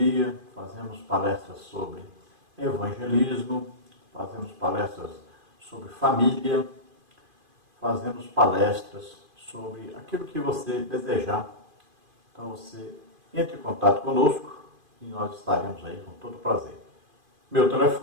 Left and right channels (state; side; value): late; left; 2.5 ms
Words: fazemos palestras sobre evangelismo, fazemos palestras sobre família, fazemos palestras sobre aquilo que você desejar. Então você entre em contato conosco e nós estaremos aí com todo prazer. Meu